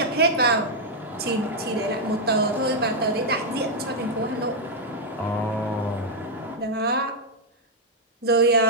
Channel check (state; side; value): normal; both; correlation -0.03